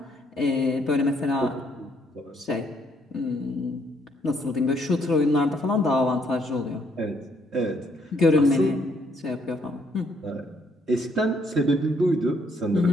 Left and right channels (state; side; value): normal; both; correlation 0.70